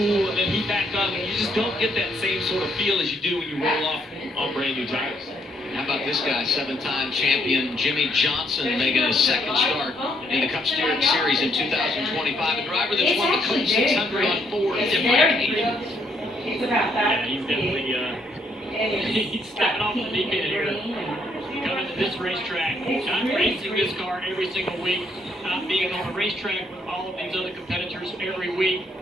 and then heat back up, and you just don't get that same sort of feel as you do when you roll off on brand new tires. How about this guy, seven-time champion Jimmie Johnson, making his second start in the Cup Series in 2025. A driver that's won the Cup 600 on 4 different occasions. Yeah, he's definitely he's stepping off the deep end here. Coming to this racetrack, not racing this car every single week, not being on a racetrack with all of these other competitors every week.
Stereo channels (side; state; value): both; normal; correlation 0.71